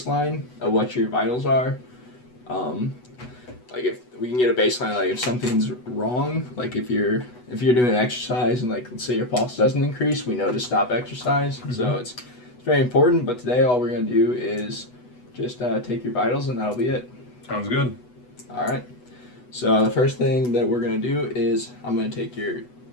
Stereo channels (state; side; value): late; right; 8.1 ms